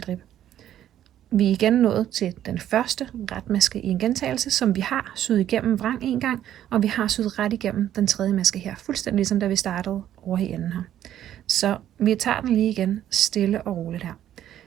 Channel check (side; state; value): left; quieter; 11.4 dB